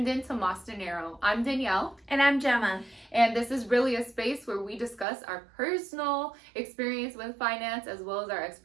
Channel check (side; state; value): left; drops out; at 5.1 s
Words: in to Moss Dinero. I'm Danielle. And I'm Gemma. And this is really a space where we discuss our personal experience with finance as well as our